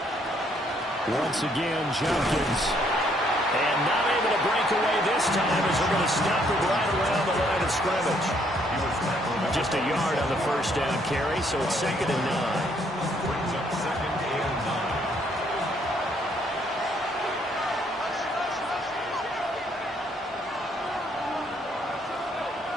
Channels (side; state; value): both; normal; correlation 0.68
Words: Once again, Jenkins. And not able to break away this time as they're going to stop it right around the line of scrimmage. Just a yard on the first down carry, so it's 2nd and 9. Brings up 2nd and 9.